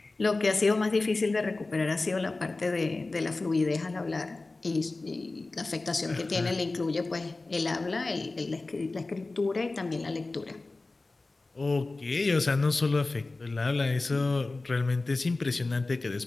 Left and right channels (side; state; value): right; quieter; 3.3 dB